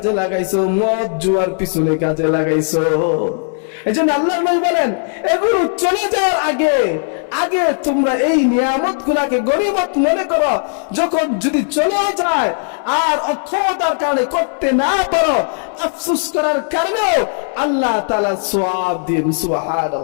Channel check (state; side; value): silent; right; 68 dB below the other